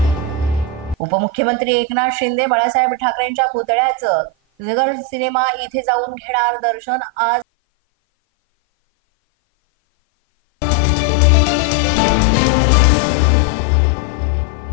उपमुख्यमंत्री एकनाथ शिंदे बाळासाहेब ठाकरेंच्या पुतळ्याचं नगर सिनेमा इथे जाऊन घेणार दर्शन। आज बाळासाहेब ठाकरेंचा स्मृती दिन, त्यानिमित्त हे घेणार दर्शन।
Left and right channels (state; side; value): drops out; right; at 7.5 s